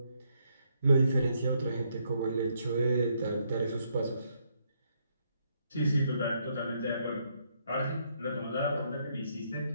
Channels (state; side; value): inverted; both; correlation -0.74